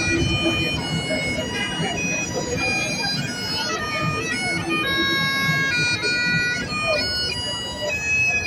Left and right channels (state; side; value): identical; both; correlation 1.00